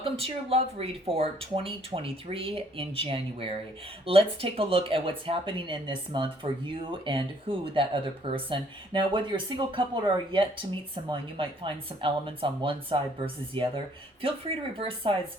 to your love read for 2023 in January. Let's take a look at what's happening in this month for you and who that other person. Now, whether you're a single couple or are yet to meet someone, you might find some elements on one side versus the other. Feel free to reverse sides,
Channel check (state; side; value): normal; both; correlation 0.63